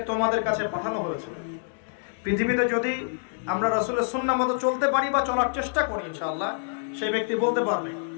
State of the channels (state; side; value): silent; right; 61 dB below the other